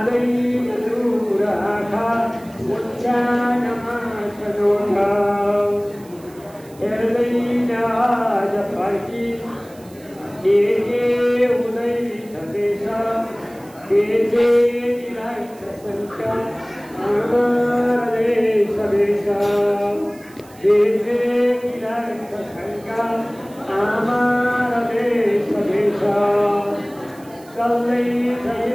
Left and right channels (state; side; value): noise; right; hiss, 25 dB below the sound